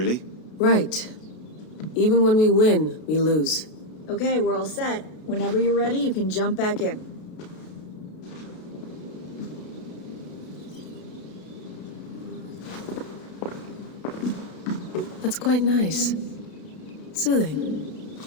Right. Even when we win, we lose. Okay, we're all set. Whenever you're ready, you can jump back in. That's quite nice. Soothing.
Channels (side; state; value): right; late; 32 ms